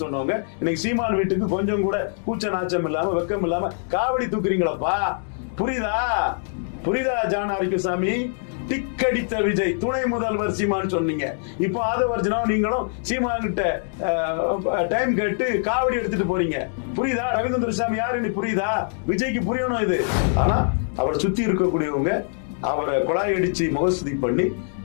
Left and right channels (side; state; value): right; silent; digital silence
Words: சொன்னவங்க இன்னைக்கு சீமான் வீட்டுக்கு கொஞ்சம் கூட கூச்ச நாச்சம் இல்லாம வெக்கம் இல்லாம காவடி தூக்குறீங்களப்பா. புரியுதா? புரியுதா ஜான் ஆரோக்கியசாமி? டிக் அடித்த விஜய் துணை முதல்வர் சீமான்னு சொன்னீங்க. இப்போ ஆதவர்ஜனா நீங்களும் சீமான் கிட்ட டைம் கேட்டு காவடி எடுத்துட்டு போறீங்க. புரியுதா? ரவீந்திர சாமி யாருன்னு புரியுதா? விஜய்க்கு புரியணும் இது. ஆனா அவரை சுத்தி இருக்கக்கூடியவங்க அவரை குழாய் அடிச்சு முகஸ்துதி பண்ணி